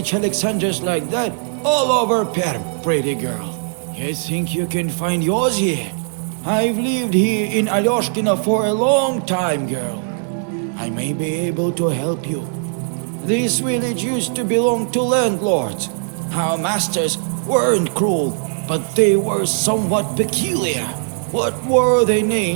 Alexanders like that all over Perm, pretty girl. You think you can find yours here? I've lived here in Alyoshkina for a long time, girl. I may be able to help you. This village used to belong to landlords. Our masters weren't cruel, but they were somewhat peculiar. What were their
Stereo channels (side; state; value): left; silent; 65 dB below the other